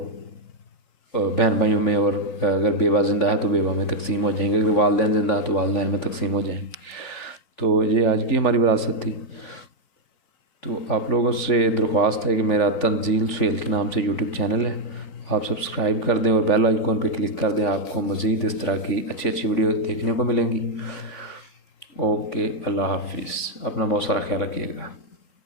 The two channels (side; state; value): right; late; 3.9 ms